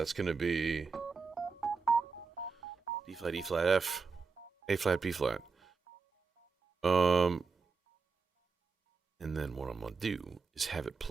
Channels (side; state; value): left; quieter; 4.9 dB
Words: going to be D flat, E flat, F, A flat, B flat. And then what I'm going to do is have it